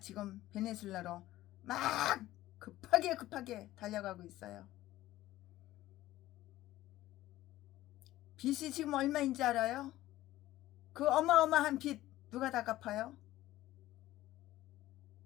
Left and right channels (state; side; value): quieter; right; 15.5 dB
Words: 베네수엘라로 막 급하게 달려가고 있어요. 빚이 지금 얼마인지 알아요? 그 어마어마한 빚 누가 다 갚아요?